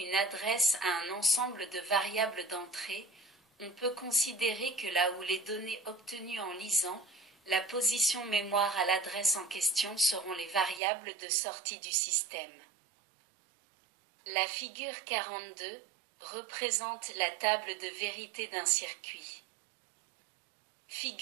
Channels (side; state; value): left; drops out; at 10.8 s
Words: adresse à un ensemble de variables d'entrée, on peut considérer que là où les données obtenues en lisant la position mémoire à l'adresse en question seront les variables de sortie du système. La figure 42 représente la table de vérité d'un circuit.